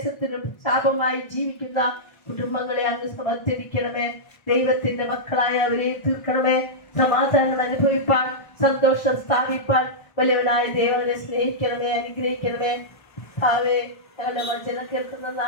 ശാപമായി ജീവിക്കുന്ന കുടുംബങ്ങളെ അങ്ങ് സമർപ്പിക്കണമേ. ദൈവത്തിന്റെ മക്കളായ അവരെ തീർക്കണമേ. സമാധാനം അനുഭവിപ്പാൻ, സന്തോഷം സ്ഥാപിപ്പാൻ വലിയവനായ ദൈവനെ സ്നേഹിക്കണമേ, അനുഗ്രഹിക്കണമേ. ഭാവേ, ഞങ്ങളുടെ വചനം കേൾക്കുന്ന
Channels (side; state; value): right; late; 1.3 ms